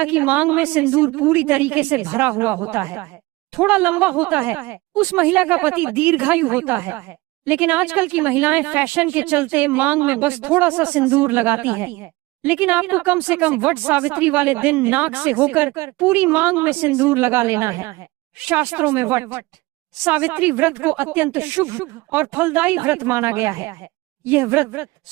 की मांग में सिंदूर पूरी तरीके से भरा हुआ होता है, थोड़ा लंबा होता है, उस महिला का पति दीर्घायु होता है। लेकिन आजकल की महिलाएं फैशन के चलते मांग में बस थोड़ा सा सिंदूर लगाती हैं। लेकिन आपको कम से कम वट सावित्री वाले दिन नाक से होकर पूरी मांग में सिंदूर लगा लेना है। शास्त्रों में वट सावित्री व्रत को अत्यंत शुभ और फलदायी व्रत माना गया है। यह व्रत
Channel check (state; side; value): quieter; left; 21.5 dB